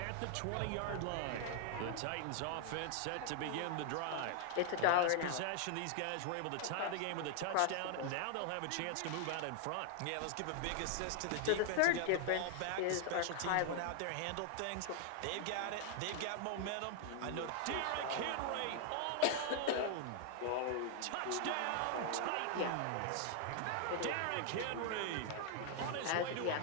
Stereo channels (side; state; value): both; different; correlation 0.00